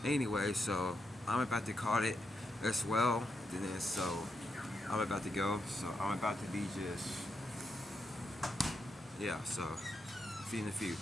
anyway, so I'm about to call it as well. Then so I'm about to go. So I'm about to be just, yeah. So see you in a few.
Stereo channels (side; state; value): both; normal; correlation 0.83